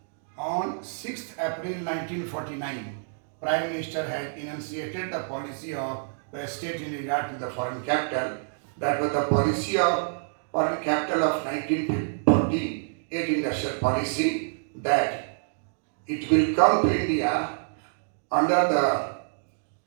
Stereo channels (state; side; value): silent; left; digital silence